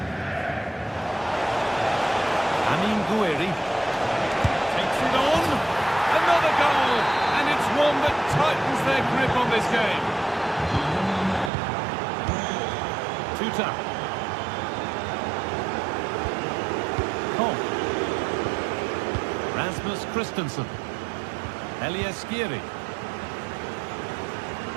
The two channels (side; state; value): left; drops out; at 11.5 s